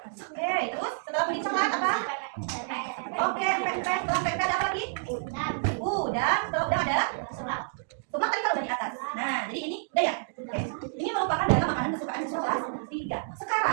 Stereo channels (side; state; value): left; silent; digital silence